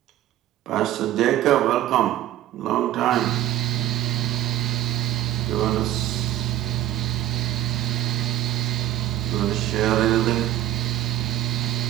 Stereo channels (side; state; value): left; quieter; 13.2 dB